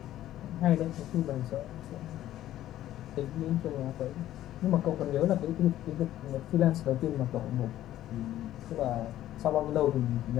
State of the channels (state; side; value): quieter; right; 13.2 dB